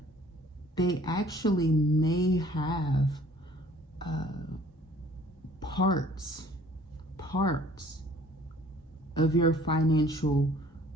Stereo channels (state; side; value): normal; both; correlation 0.54